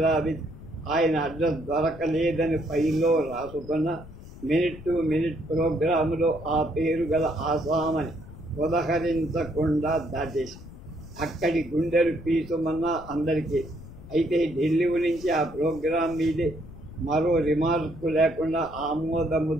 ఆయన అడ్రస్ దొరకలేదని ఫైల్లో రాసుకున్న మినిట్ టు మినిట్ ప్రోగ్రాములో ఆ పేరు గల ఆసామని ఉదహరించకుండా దాటేసి అక్కడి గుండెలు పీసుమన్నా అందరికీ. అయితే ఢిల్లీ నుంచి ఆ ప్రోగ్రాం మీదే మరో రిమార్కు లేకుండా ఆమోద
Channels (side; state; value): left; noise; rumble, 16 dB below the sound